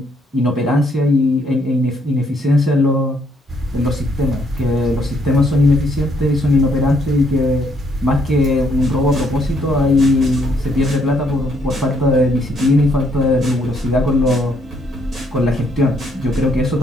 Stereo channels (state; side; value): normal; both; correlation 0.70